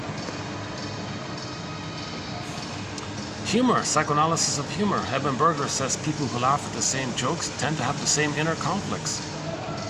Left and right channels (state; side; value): identical; both; correlation 1.00